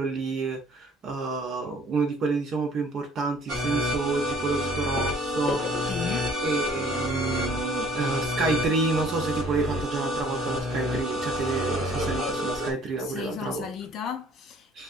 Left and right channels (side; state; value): both; normal; correlation 0.56